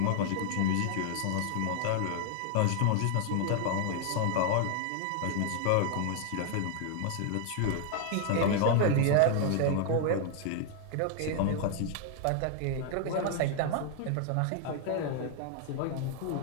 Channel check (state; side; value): different; both; correlation 0.00